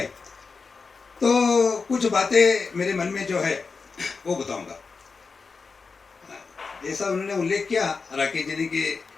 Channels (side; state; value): right; quieter; 4.7 dB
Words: तो कुछ बातें मेरे मन में जो है वो बताऊंगा। जैसा उन्होंने उल्लेख किया राकेश जी ने कि